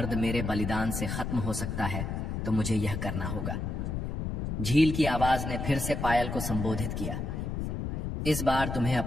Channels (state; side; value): noise; left; rumble, 3 dB below the sound